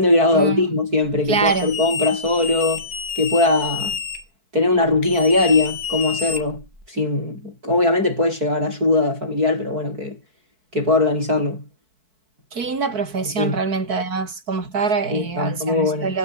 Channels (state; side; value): late; left; 4.6 ms